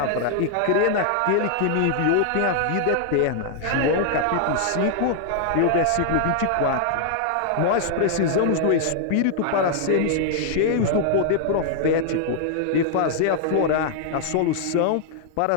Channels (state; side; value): different; both; correlation -0.01